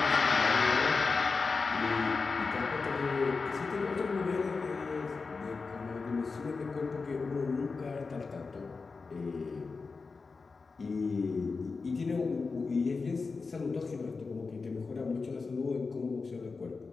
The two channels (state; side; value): quieter; right; 4.4 dB